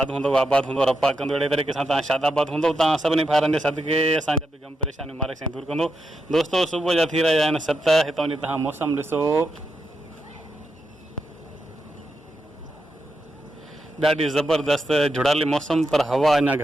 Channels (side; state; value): both; normal; correlation 0.85